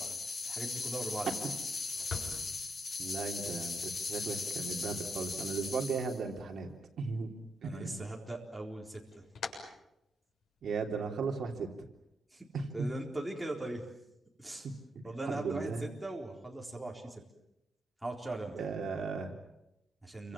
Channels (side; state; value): both; normal; correlation 0.80